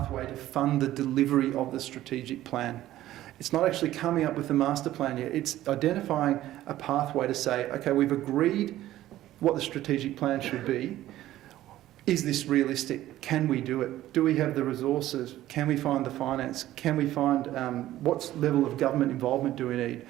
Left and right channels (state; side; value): quieter; left; 14.3 dB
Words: to fund the delivery of the strategic plan. It's not actually coming up with the master plan yet. It's identifying a pathway to say, okay, we've agreed what the strategic plan should be. Is this realistic? Can we do it? Do we have the resources? Can we find the finance? Can we find what level of government involvement do we need?